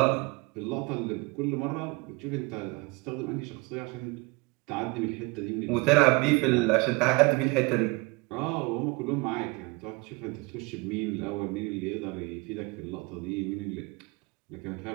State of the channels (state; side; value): quieter; left; 26.4 dB